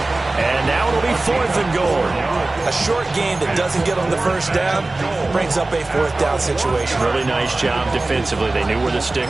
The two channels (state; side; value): quieter; left; 3.0 dB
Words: And now it'll be 4th and goal. A short game that doesn't get on the first down brings up a 4th down situation. Really nice job defensively. They knew where the